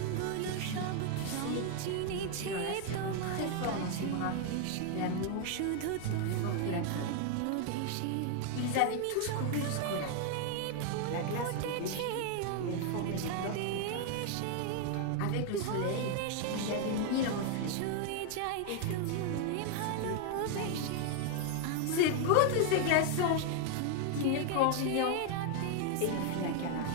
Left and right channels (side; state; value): both; different; correlation 0.00